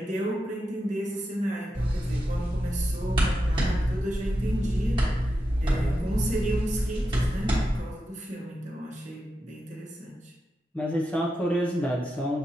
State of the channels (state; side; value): normal; both; correlation 0.88